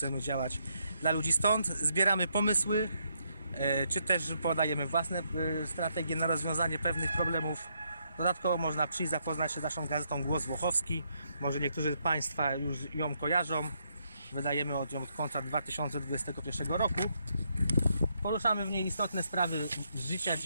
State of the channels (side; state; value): both; inverted; correlation -0.76